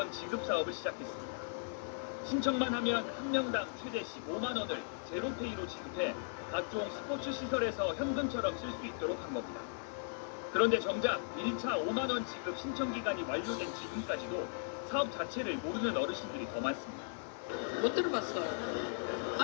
지급 사업을 시작했습니다. 신청만 하면 한 명당 최대 15만 원을 제로페이로 지급해 각종 스포츠 시설에서 현금처럼 쓸 수 있도록 한 겁니다. 그런데 정작 1차 5만 원 지급 신청 기간이 만료된 지금까지도 사업 자체를 모르는 어르신들이 더 많습니다. 못 들어봤어요.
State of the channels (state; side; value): silent; right; 53 dB below the other